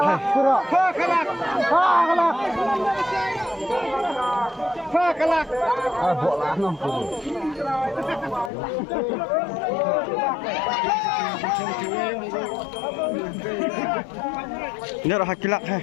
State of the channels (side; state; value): right; drops out; at 8.5 s